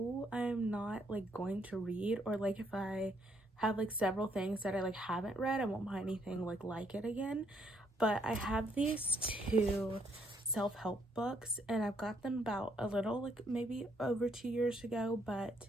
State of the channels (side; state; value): both; normal; correlation 0.71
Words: I'm not like going to read, or like if I have like several things that I like haven't read, I won't buy anything like it again. But I have these two self-help books, and I've got them about a little like maybe over 2 years ago, but